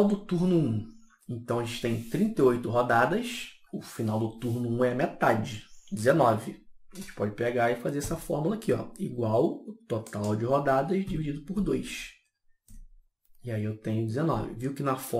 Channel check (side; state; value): both; identical; correlation 1.00